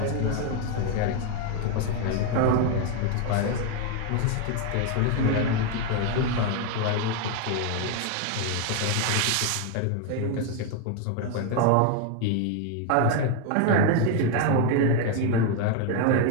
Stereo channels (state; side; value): different; both; correlation 0.01